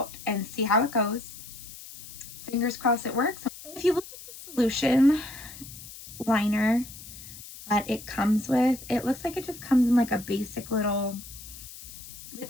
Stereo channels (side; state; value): left; noise; hiss, 15 dB below the sound